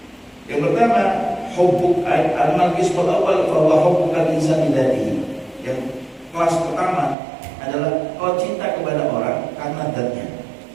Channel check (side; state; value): left; drops out; at 7.2 s